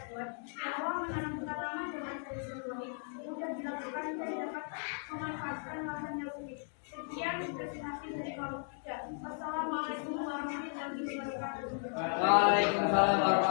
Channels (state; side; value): silent; right; 54 dB below the other